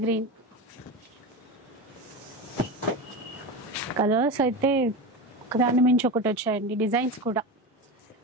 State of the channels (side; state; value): both; normal; correlation 0.22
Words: గ్రీన్ కలర్స్ అయితే ఒకదాని మించి ఒకటి వచ్చాయండి. డిజైన్స్ కూడా